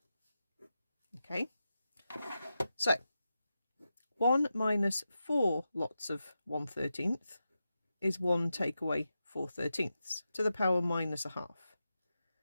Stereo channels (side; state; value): both; inverted; correlation -0.90